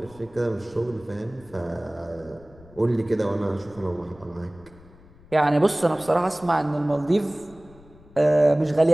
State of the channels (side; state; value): left; noise; rumble, 24 dB below the sound